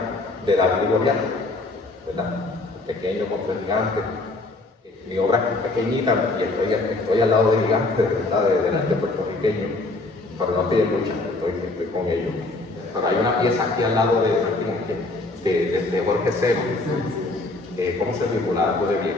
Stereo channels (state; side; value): quieter; right; 3.1 dB